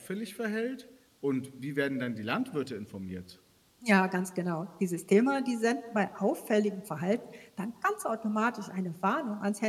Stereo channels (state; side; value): identical; both; correlation 1.00